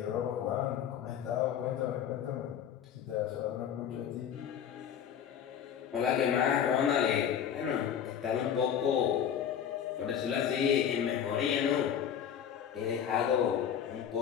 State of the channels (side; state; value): right; quieter; 8.9 dB